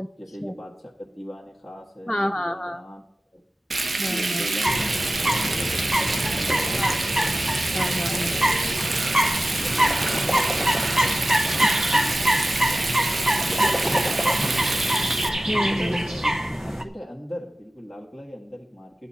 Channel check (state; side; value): normal; both; correlation 0.96